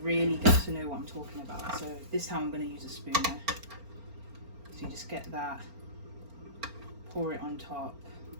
get to know what I'm talking about. So this time I'm going to use a spoon now. So you just get that, pour it on top,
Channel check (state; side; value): late; left; 4.4 ms